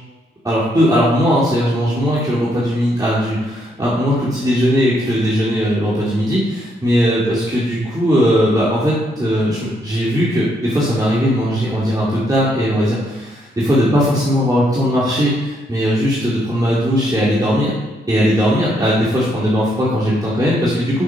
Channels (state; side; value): normal; both; correlation 0.74